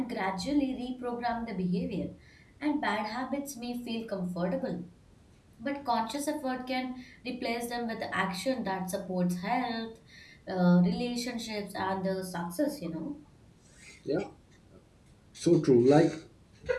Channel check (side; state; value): both; identical; correlation 1.00